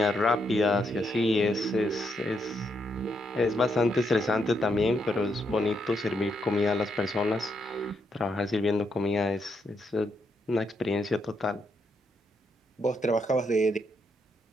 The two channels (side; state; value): both; normal; correlation 0.78